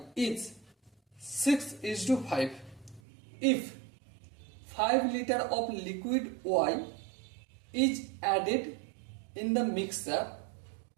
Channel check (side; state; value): left; drops out; at 3.0 s